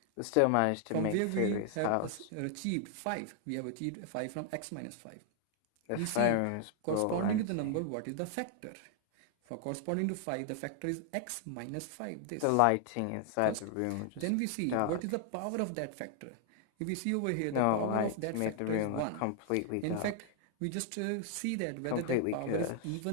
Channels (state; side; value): different; both; correlation 0.00